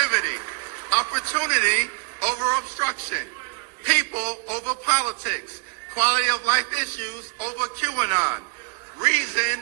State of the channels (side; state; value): left; quieter; 27.6 dB